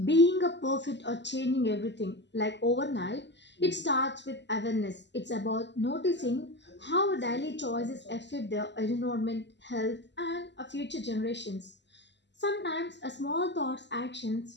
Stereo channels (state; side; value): late; right; 0.51 ms